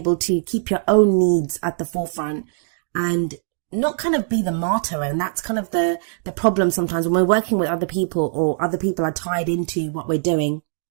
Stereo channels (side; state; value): left; silent; digital silence